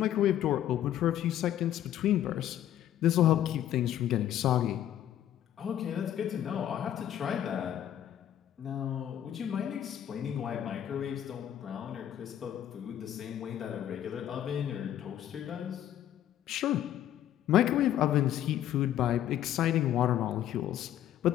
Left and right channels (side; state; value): right; quieter; 11.4 dB